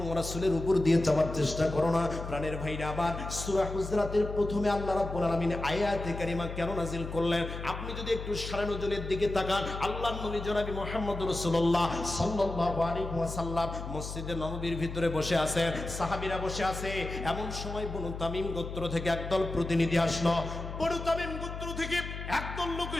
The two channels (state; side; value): noise; left; hum, 8 dB below the sound